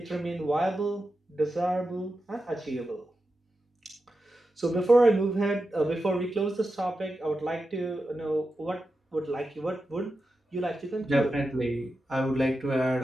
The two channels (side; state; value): both; normal; correlation 0.90